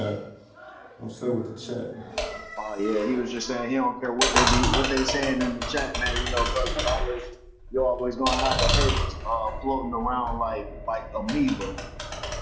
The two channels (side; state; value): both; identical; correlation 1.00